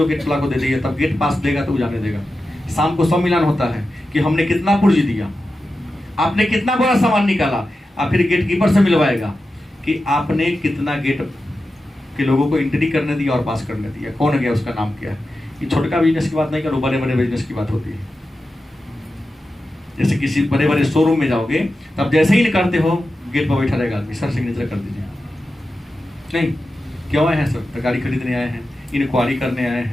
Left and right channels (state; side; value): normal; both; correlation 0.92